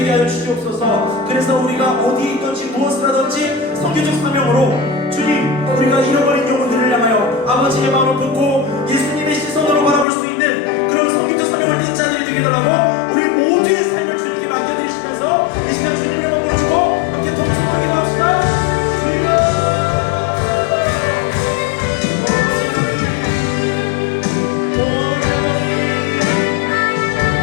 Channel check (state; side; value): drops out; right; at 10.1 s